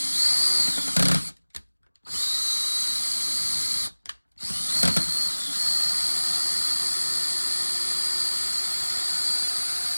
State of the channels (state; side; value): inverted; both; correlation -1.00